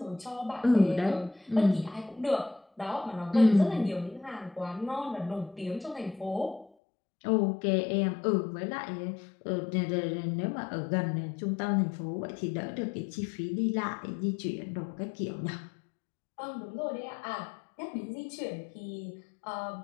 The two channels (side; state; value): right; drops out; at 6.7 s